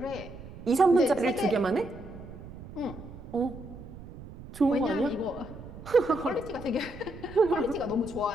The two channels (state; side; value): noise; right; rumble, 14 dB below the sound